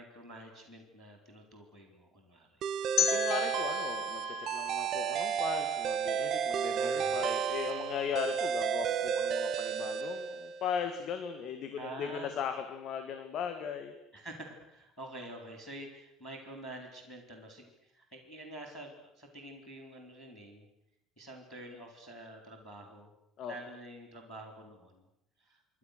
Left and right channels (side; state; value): both; normal; correlation 0.53